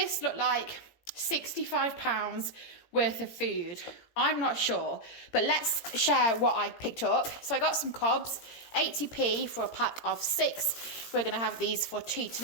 look like £65 worth of food? I'm not sure, but let's share what I picked up. So I got some cobs, 80p for a pack of 6. We're going to have these for tea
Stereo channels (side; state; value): right; late; 17 ms